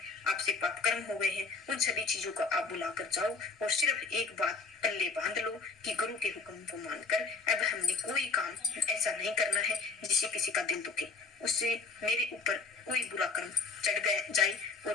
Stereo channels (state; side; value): quieter; right; 4.2 dB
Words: आपसे पाप कर्म हो गए हैं, उन सभी चीजों को आप बुलाकर जाओ और सिर्फ एक बात पल्ले बांध लो कि गुरु के हुक्म को मानकर अब हमने कोई काम ऐसा नहीं करना है जिससे किसी का दिल दुखे, उससे मेरे ऊपर कोई बुरा कर्म चढ़ जाए।